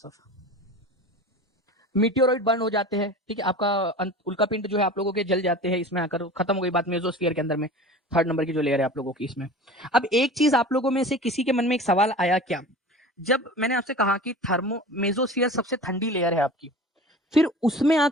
मीटियोरॉइड बर्न हो जाते हैं, ठीक है, आपका उल्का पिंड जो है आप लोगों के जल जाते हैं, इसमें आकर खत्म हो गई बात मेसोस्फीयर के अंदर में, थर्ड नंबर की जो लेयर है आप लोगों की इसमें। अब एक चीज आप लोगों में से किसी के मन में एक सवाल आया क्या, जब मैंने आपसे कहा कि मेसोस्फीयर सबसे ठंडी लेयर है आपकी, फिर उसमें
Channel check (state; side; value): normal; both; correlation 0.37